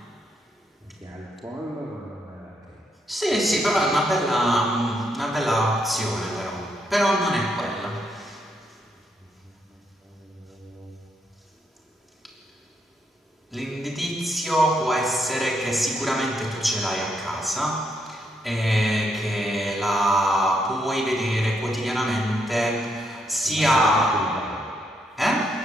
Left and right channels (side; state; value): both; normal; correlation 0.77